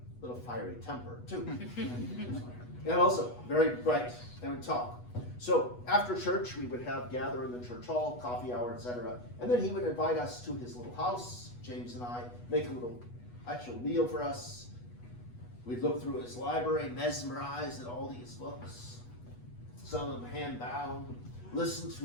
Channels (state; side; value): late; right; 8.2 ms